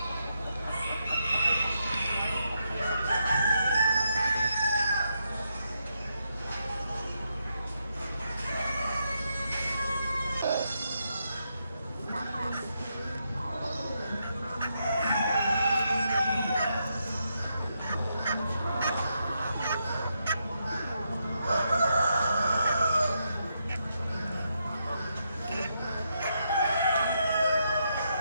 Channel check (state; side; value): inverted; both; correlation -0.81